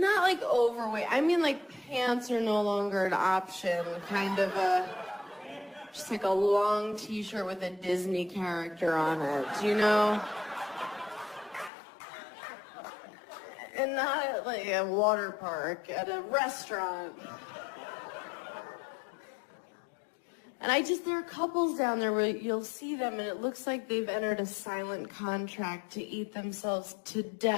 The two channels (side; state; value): right; drops out; at 11.7 s